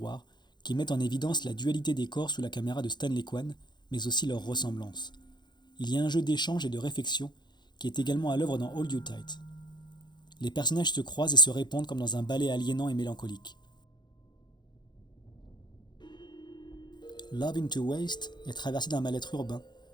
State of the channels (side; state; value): right; late; 0.21 ms